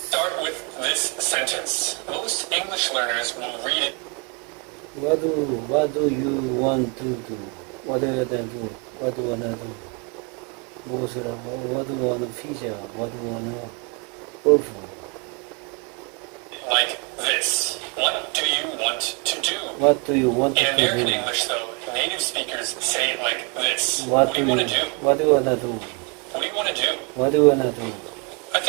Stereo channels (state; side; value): quieter; left; 32.1 dB